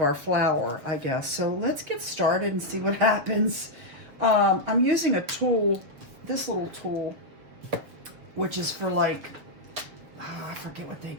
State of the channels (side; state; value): left; late; 7.2 ms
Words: our flower, I guess. So let's get started and see what happens. I'm using a tool, this little tool, which is for like, I forget what they